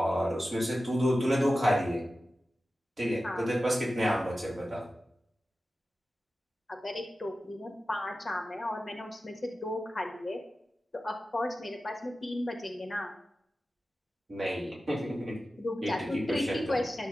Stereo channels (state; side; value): normal; both; correlation 0.94